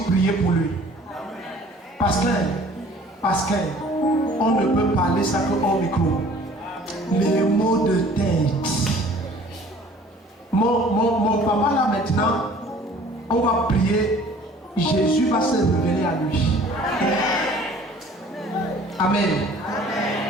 prier pour lui. Parce qu'on ne peut parler ça que au micro. Les mots de tête. Mon papa là maintenant, on va prier. Jésus va se révéler à lui. Amen.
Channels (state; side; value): normal; both; correlation 0.51